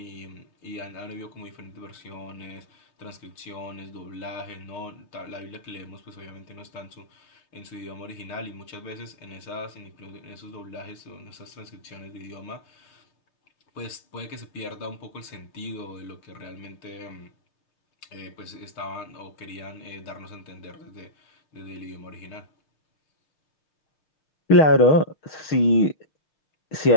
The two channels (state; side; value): late; right; 6.5 ms